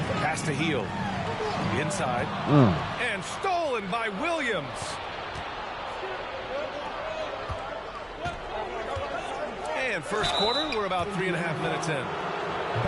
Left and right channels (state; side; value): identical; both; correlation 1.00